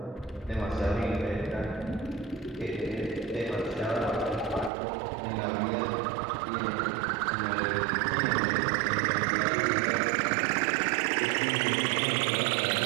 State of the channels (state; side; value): drops out; left; at 4.7 s